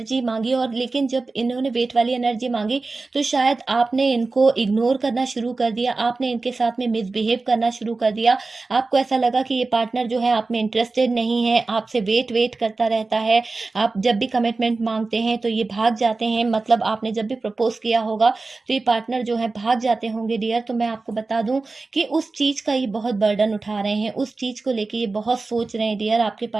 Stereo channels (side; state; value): left; quieter; 3.7 dB